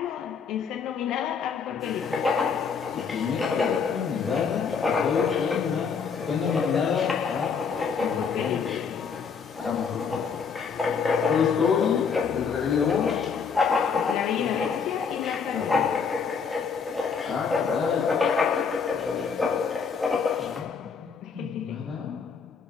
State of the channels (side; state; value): right; quieter; 6.0 dB